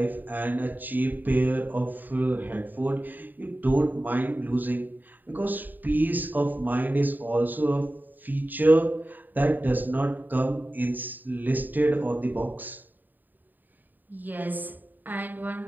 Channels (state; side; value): late; left; 0.089 ms